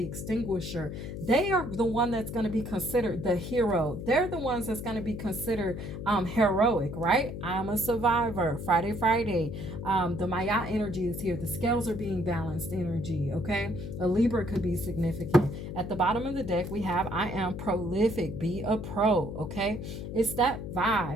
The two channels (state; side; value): noise; left; hum, 7 dB below the sound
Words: extinguisher, they are the one that's going to be considered the hero. They're the ones that's going to be considered heroic, right? I'm a survivor. Friday, Friday. The Maya energy is here. The scales are being balanced energy, okay? A Libra could be significant. At the bottom of the deck, we have I am prolific. Be a pro, okay? It's that